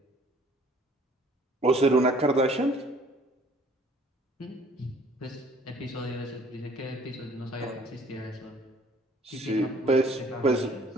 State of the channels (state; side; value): normal; both; correlation 0.56